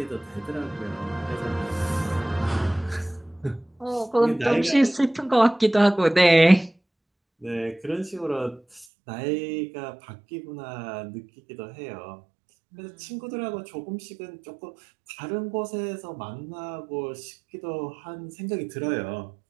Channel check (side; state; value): left; drops out; at 8.8 s